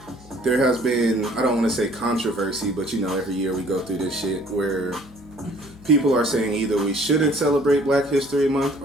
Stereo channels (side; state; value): left; noise; hum, 22 dB below the sound